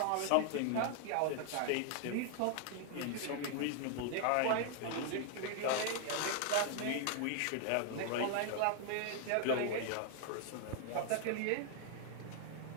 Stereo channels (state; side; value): different; both; correlation 0.00